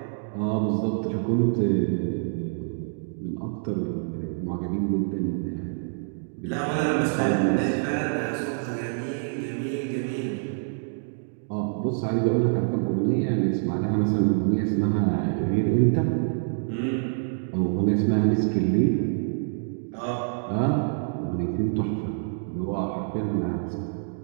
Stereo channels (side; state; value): left; silent; digital silence